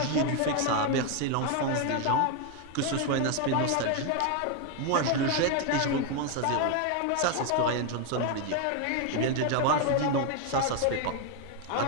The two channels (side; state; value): both; different; correlation 0.01